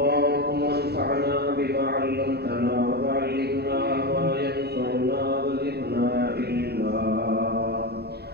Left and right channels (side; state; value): left; late; 0.47 ms